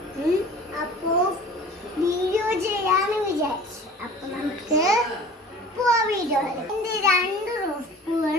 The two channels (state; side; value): normal; both; correlation 0.43